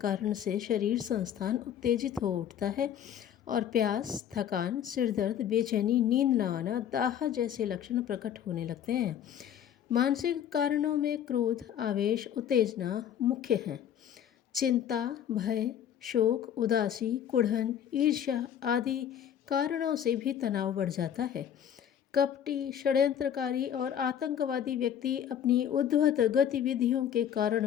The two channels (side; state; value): right; quieter; 9.5 dB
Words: से शरीर संस्थान उत्तेजित हो उठता है और प्यास, थकान, सिरदर्द, बेचैनी, नींद न आना, दाह जैसे लक्षण प्रकट होने लगते हैं। मानसिक कारणों में क्रोध, आवेश, उत्तेजना मुख्य हैं। चिंता, भय, शोक, उदासी, कुढ़न, ईर्ष्या आदि कारणों से भी तनाव बढ़ जाता है। कपटी, षड्यंत्रकारी और आतंकवादी व्यक्ति अपनी उद्धत गतिविधियों के